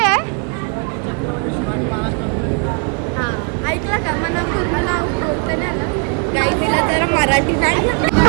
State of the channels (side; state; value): left; quieter; 36.5 dB